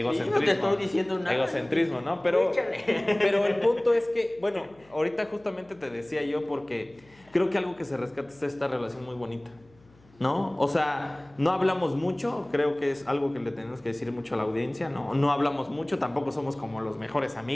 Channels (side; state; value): left; noise; hum, 29 dB below the sound